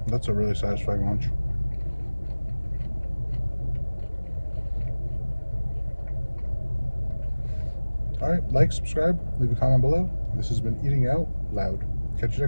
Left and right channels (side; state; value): both; inverted; correlation -1.00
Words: That's a really satisfying lunch. All right, like, subscribe, leave a comment below. This has been Eating Out Loud. Catch you